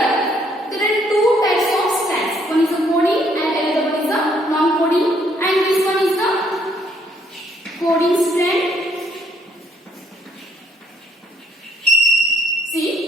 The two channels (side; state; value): both; normal; correlation 0.67